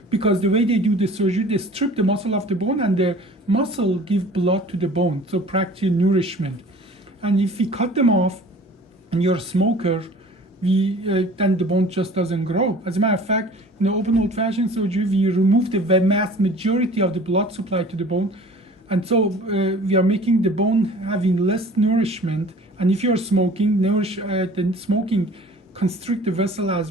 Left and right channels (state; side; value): normal; both; correlation 0.46